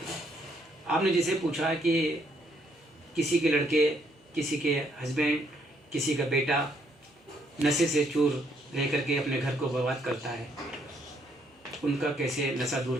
आपने जैसे पूछा कि किसी के लड़के, किसी के हस्बैंड, किसी का बेटा नशे से चूर रह करके अपने घर को बर्बाद करता है, उनका कैसे नशा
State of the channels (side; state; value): both; normal; correlation 0.71